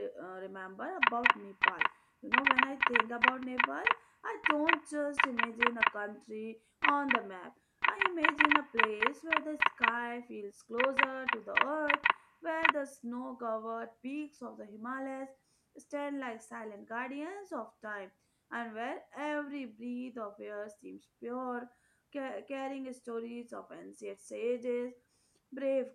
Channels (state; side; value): identical; both; correlation 1.00